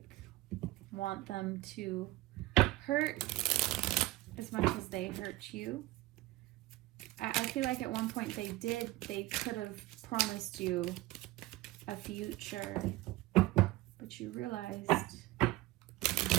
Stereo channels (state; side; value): quieter; left; 18.0 dB